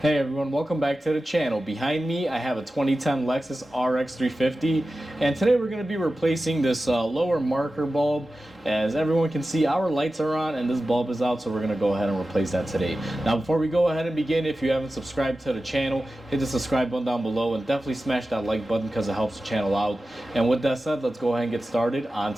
Hey everyone, welcome back to the channel. Behind me I have a 2010 Lexus RX350, and today we're going to be replacing this lower marker bulb. As everyone can see, our lights are on and this bulb is out, so we're going to go ahead and replace that today. Now before we go ahead and begin, if you haven't subscribed to the channel, hit the subscribe button down below and definitely smash that like button because it helps the channel out. And with that said, let's go ahead and get started on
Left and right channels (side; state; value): both; normal; correlation 0.94